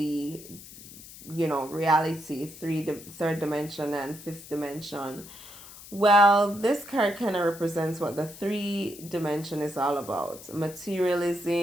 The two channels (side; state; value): left; noise; hiss, 17 dB below the sound